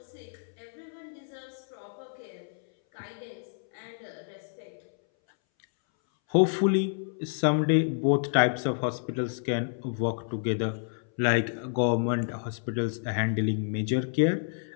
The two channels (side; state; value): right; silent; 58 dB below the other